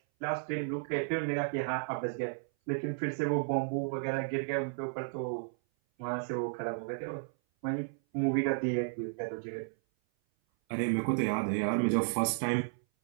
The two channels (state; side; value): silent; left; 56 dB below the other